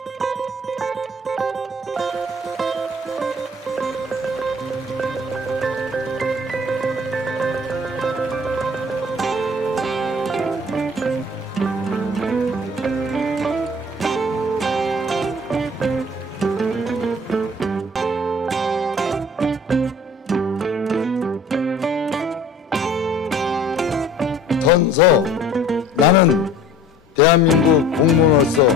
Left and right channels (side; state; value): both; normal; correlation 0.48